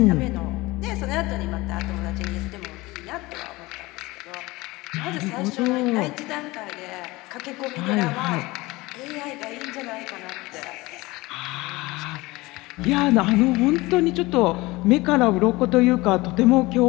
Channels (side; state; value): right; quieter; 21.4 dB